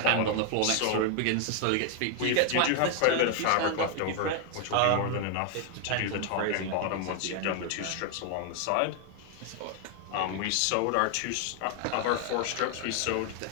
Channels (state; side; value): different; both; correlation 0.00